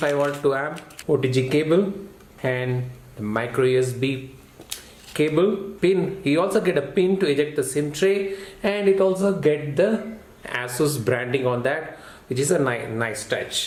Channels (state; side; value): identical; both; correlation 1.00